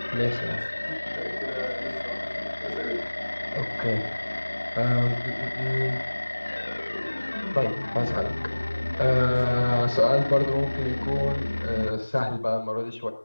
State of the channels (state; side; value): inverted; both; correlation -1.00